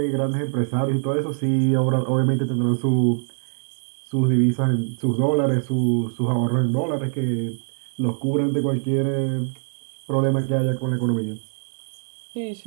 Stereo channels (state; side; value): silent; left; digital silence